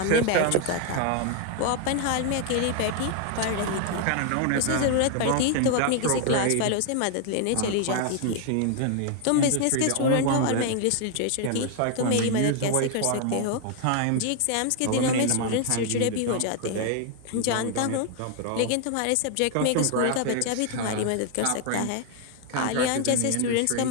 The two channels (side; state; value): both; different; correlation 0.00